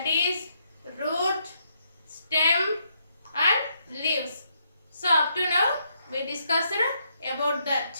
is root, stem and leaves. So, up to now, we discussed about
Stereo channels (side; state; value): both; inverted; correlation -0.75